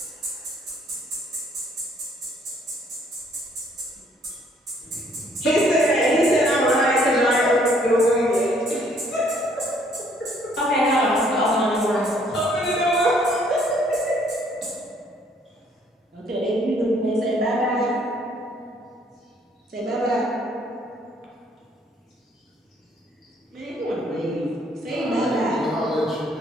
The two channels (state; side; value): normal; both; correlation 0.64